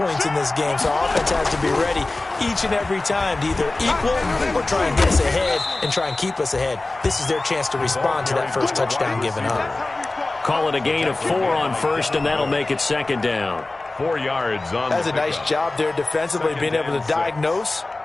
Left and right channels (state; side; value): quieter; right; 3.0 dB